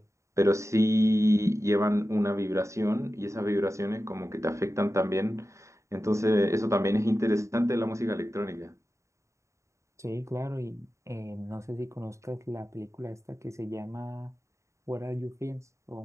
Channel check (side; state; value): left; late; 0.14 ms